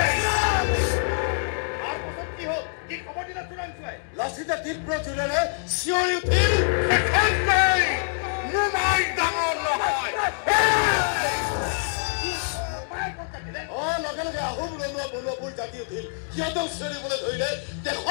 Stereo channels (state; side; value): silent; right; digital silence